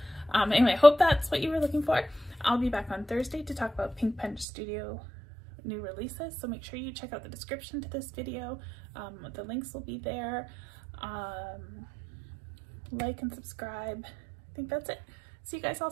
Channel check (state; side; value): drops out; left; at 4.5 s